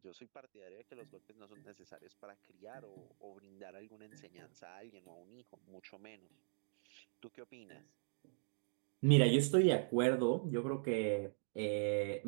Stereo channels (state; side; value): silent; left; digital silence